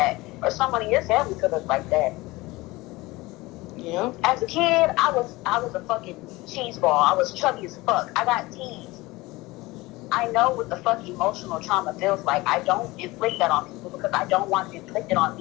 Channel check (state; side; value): quieter; right; 21.0 dB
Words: Or someone in your family could look like that. Yeah. As a kid, I was a fucking cheese ball. I was chubby as fuck. I got teased. I know what the fuck emotional trauma feels like. I don't inflict that on people because I don't want it inflicted on